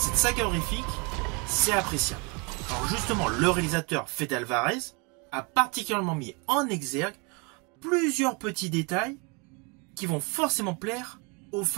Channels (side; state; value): left; quieter; 30.8 dB